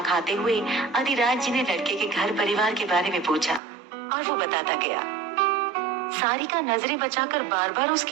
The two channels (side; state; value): left; drops out; at 3.6 s